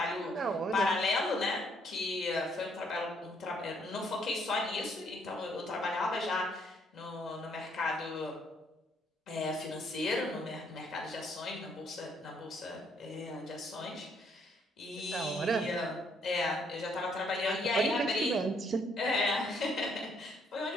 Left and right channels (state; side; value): normal; both; correlation 0.69